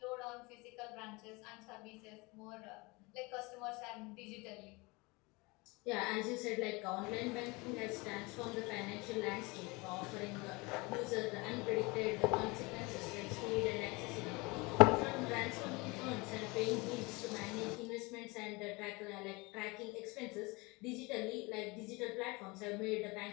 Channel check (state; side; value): quieter; right; 25.6 dB